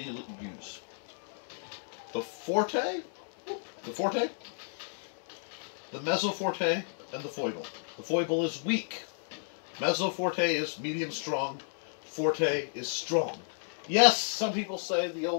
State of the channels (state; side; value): silent; right; digital silence